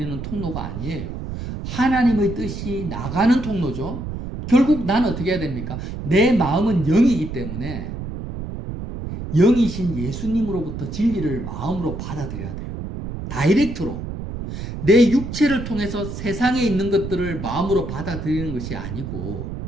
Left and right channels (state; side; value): noise; right; rumble, 7 dB below the sound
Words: 통로가 아니에요. 하나님의 뜻이 나가는 통로죠. 결국 나는 어떻게 해야 됩니까? 내 마음은 영이기 때문에 영이신 예수님으로부터 진리를 마음으로 받아들여야 돼요. 다이렉트로. 내 육체를 통해서 세상에 있는 것들을 마음으로 받아들이는 것이 아니고